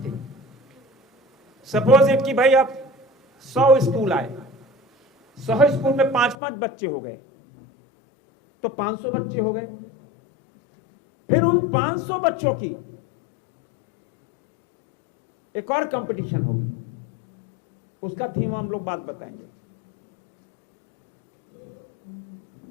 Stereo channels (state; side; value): drops out; right; at 6.4 s